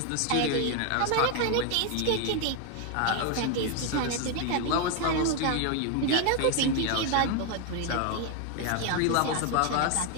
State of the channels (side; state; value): both; different; correlation 0.01